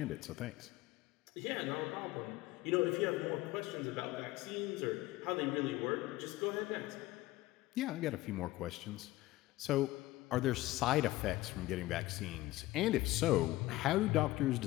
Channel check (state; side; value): quieter; right; 17.8 dB